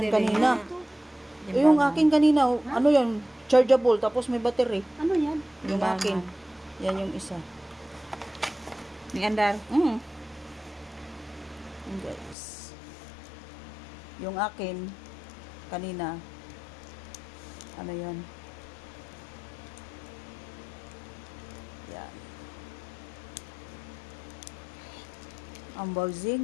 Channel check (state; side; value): drops out; right; at 12.4 s